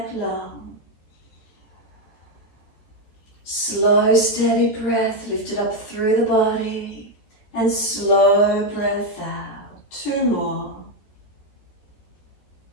long. Slow, steady breath, lift it up through the body. And slow breath out. 2 more.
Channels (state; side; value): late; right; 14 ms